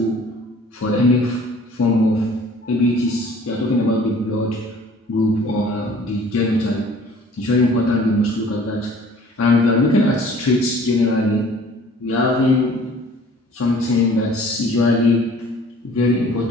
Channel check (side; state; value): both; normal; correlation 0.51